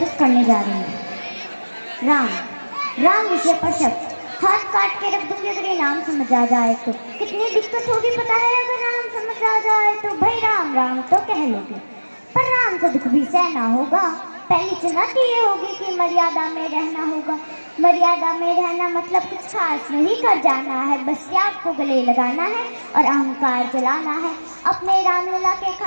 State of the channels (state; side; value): inverted; both; correlation -1.00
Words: करने जा रही हूँ। राम। राम विषय पर शब्द हाथ काट के रख दूंगी अगर ये नाम समझ आ जाए तो। कितनी दिक्कत होगी पता है अगर राम समझ आ जाए तो। भाई राम राम तो कह लोगे पर राम से दुख भी सहना होगा। पहली चुनौती ये होगी कि मर्यादा में रहना होगा। मर्यादा में रहना मतलब कुछ खास नहीं कर जाना है, बस त्याग को गले लगाना है और अहंकार जलाना है। अपने रामलला के